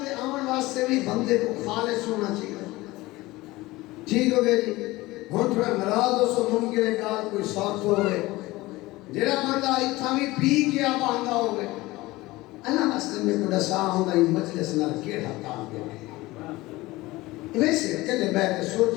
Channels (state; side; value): quieter; right; 19.7 dB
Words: کے آمن واسطے بھی بندے کو خالص ہونا چاہیے. ٹھیک ہو گیا جی. ہوں تھوڑا ناراض ہو سو ممکن ہے کہ کوئی ساتھ ہو گئے جڑا بندہ اتنا بھی پی کے آپ آندا ہو گئے اللہ واسطے میں کو دسا ہوندا یہ مجلس نال کیڑا کام کرے. ویسے کلے بیٹھ کے